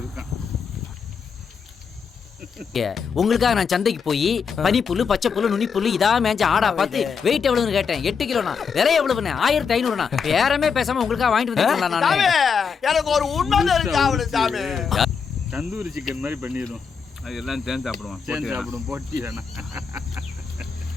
இருக்கான். உங்களுக்காக நான் சந்தைக்கு போய் பனிப்புல்லு, பச்சை புல்லு, நுனி புல்லு இதா மேஞ்ச ஆடா பார்த்து வெயிட் எவ்வளவுன்னு கேட்டேன். 8 கிலோண்ணா. விலை எவ்வளவுண்ணே? 1500ண்ணா. பேரமே பேசாம உங்களுக்காக வாங்கிட்டு வந்துருக்கேன் நான். எனக்கு ஒரு உண்மை தெரிஞ்சு சாமி. தந்தூரி சிக்கன் மாதிரி பண்ணிடுவோம். அது எல்லாம் சேர்ந்து சாப்பிடுவோம். சேர்ந்து சாப்பிடுவோம். போட்டி வேணாம்.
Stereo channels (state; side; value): quieter; right; 6.1 dB